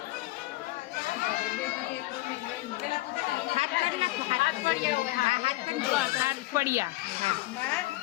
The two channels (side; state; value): right; quieter; 19.3 dB